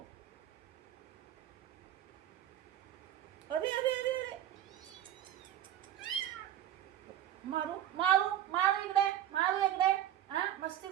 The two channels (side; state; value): left; quieter; 11.6 dB